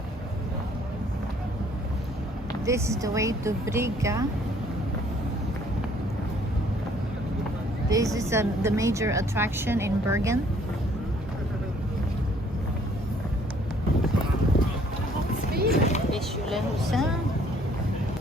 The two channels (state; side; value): normal; both; correlation 0.60